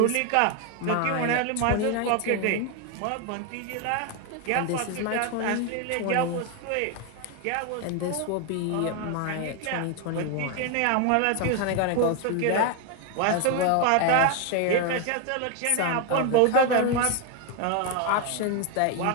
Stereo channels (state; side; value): different; both; correlation 0.01